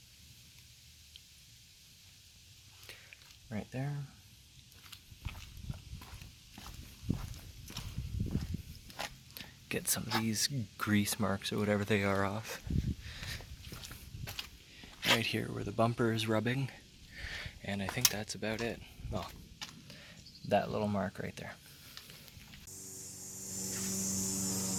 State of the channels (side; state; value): both; identical; correlation 1.00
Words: Right there. Get some of these grease marks or whatever they are off. Right here where the bumper is rubbing. And I think that's about it. Well, that little mark right there.